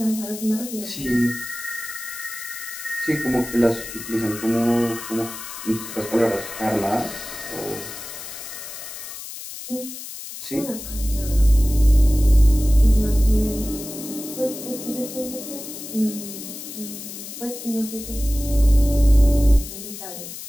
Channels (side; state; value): left; noise; hiss, 11 dB below the sound